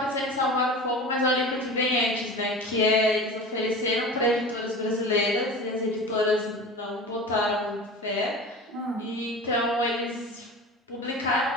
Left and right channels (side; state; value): both; normal; correlation 0.34